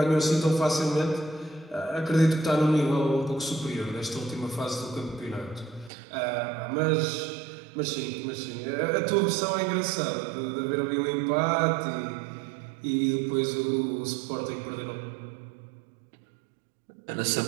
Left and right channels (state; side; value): drops out; left; at 5.9 s